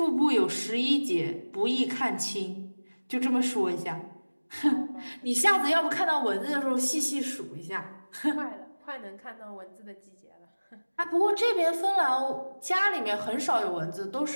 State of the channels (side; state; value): both; inverted; correlation -1.00